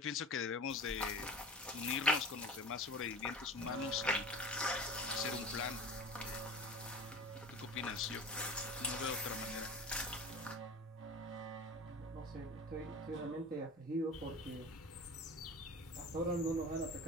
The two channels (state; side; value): normal; both; correlation 0.36